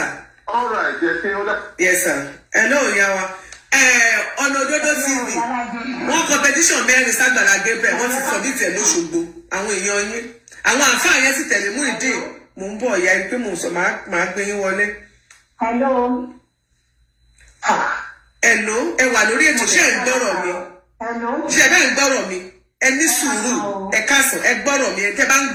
ọ̀rọ̀ ẹ̀jẹ̀ ṣe ó dá. yes sir ẹ lóò yá wa ọ̀nà òdodo TV wọ́n competition 4 ságbàlá Gabriel wọ́n ti submit ẹ̀ lóṣogbo àwọn èèyàn yín àwọn àǹfààní yẹn sì tẹ̀lé mú ìdí mò ń bọ̀ ìyá pé mò ń sọ máa gbé yín wọlé. Hello, ẹ wà lórí ètò ṣé ẹ ń gbọ́rọ̀ mi ṣé ẹ bẹ́ẹ̀ ń gbọ́rọ̀ mi ẹ ní sùúrù ẹ káàsán ẹ gbọ́rọ̀ mi ẹ tẹ́ bá ń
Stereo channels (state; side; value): identical; both; correlation 1.00